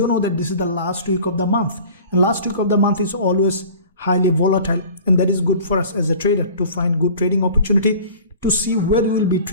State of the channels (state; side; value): inverted; both; correlation -0.43